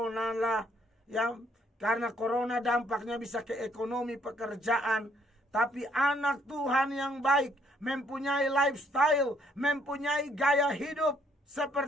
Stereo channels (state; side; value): normal; both; correlation 0.67